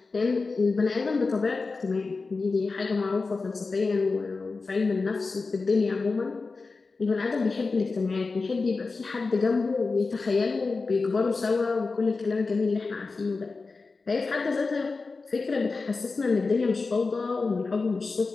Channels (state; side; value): quieter; right; 4.1 dB